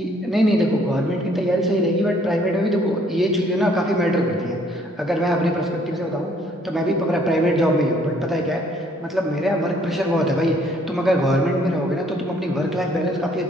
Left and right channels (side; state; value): both; normal; correlation 0.63